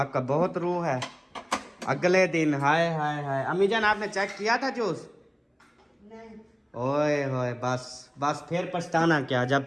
बहुत रूह है। अगले दिन हाय हाय हाय, अम्मी जान आपने चेक किया था जूस? ओए होए बस फिर पछताना क्या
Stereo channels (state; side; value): identical; both; correlation 1.00